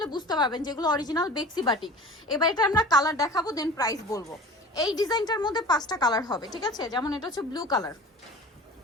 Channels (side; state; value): both; normal; correlation 0.40